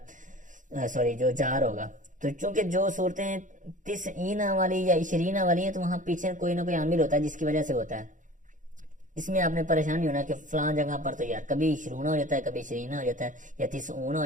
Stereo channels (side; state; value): left; late; 0.37 ms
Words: جو جار ہوگا. تو چونکہ جو صورتیں 90 والی یا 20 والی ہیں تو وہاں پیچھے کوئی نہ کوئی عامل ہوتا ہے جس کی وجہ سے ہوتا ہے. اس میں آپ نے پریشان نہیں ہونا کہ فلاں جگہ پر تو یار کبھی 20 ہو جاتا ہے، کبھی 20 ہو جاتا ہے، یا 30 ہو